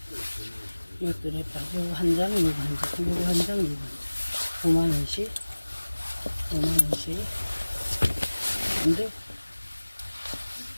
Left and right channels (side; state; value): both; inverted; correlation -1.00